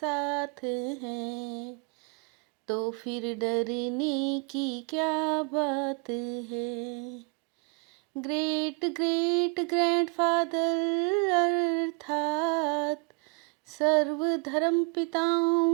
हैं तो फिर डरने की क्या बात है। ग्रेट ग्रेट ग्रैंडफादर अर्थात सर्व धर्म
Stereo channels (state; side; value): quieter; left; 32.0 dB